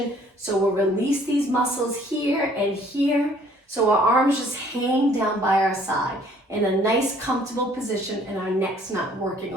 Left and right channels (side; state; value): both; normal; correlation 0.59